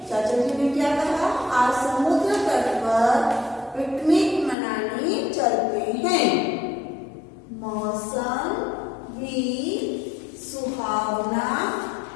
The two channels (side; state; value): right; drops out; at 4.5 s